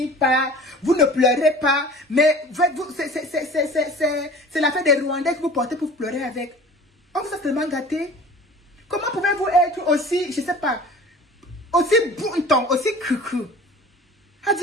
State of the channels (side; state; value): both; normal; correlation 0.43